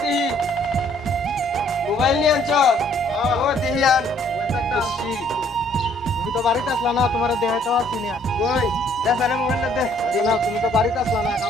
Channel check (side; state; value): both; normal; correlation 0.63